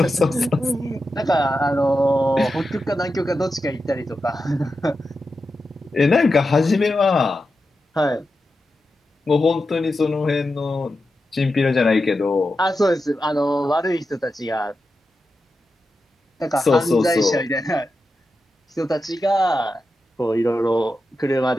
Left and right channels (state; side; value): normal; both; correlation 0.90